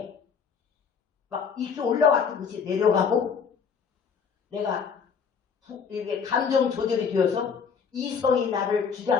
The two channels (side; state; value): right; quieter; 6.3 dB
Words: 막 이렇게 올라왔던 것이 내려가고 내가 이렇게 감정 조절이 되어서 이성이 나를